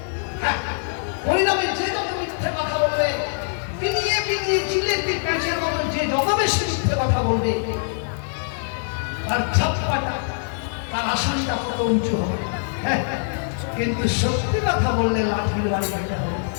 হ্যাঁ, পরিণামে যে যত মিথ্যে কথা বলবে, পিনিয়ে পিনিয়ে জিলেপি প্যাঁচের মতো যে যত বেশি মিথ্যে কথা বলবে, তার ছাপ্পাটা, তার আসনটা কত উঁচু হবে। হ্যাঁ, কিন্তু সত্যি কথা বললে লাঠির বাড়ি খেতে হবে।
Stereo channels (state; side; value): silent; right; digital silence